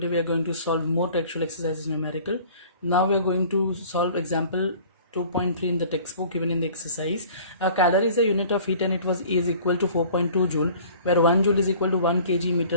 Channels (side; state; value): both; inverted; correlation -0.48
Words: we are going to solve more textual exercises numerical. Now we are going to solve example 2.3 in the textbook given in the exercise. A calorie is a unit of heat and it was is equal to 4.2 joule, where 1 joule is equal to 1 kg